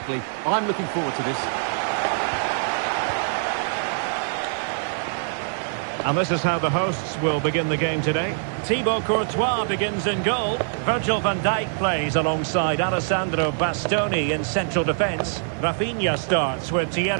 I'm looking forward to this. And this is how the hosts will begin the game today. Thibaut Courtois begins in goal. Virgil van Dijk plays alongside Alessandro Bastoni in central defence. Rafinha starts with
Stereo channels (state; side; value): silent; left; digital silence